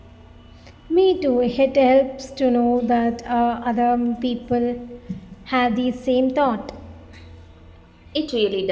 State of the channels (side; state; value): both; identical; correlation 1.00